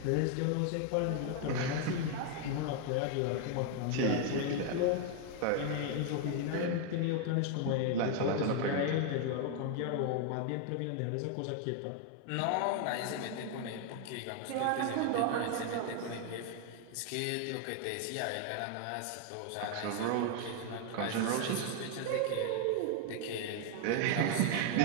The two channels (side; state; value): both; different; correlation 0.00